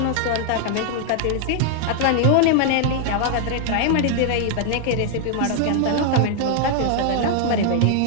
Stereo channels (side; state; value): both; different; correlation 0.00